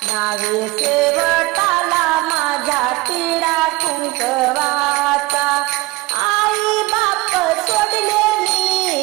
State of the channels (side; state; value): left; quieter; 21.2 dB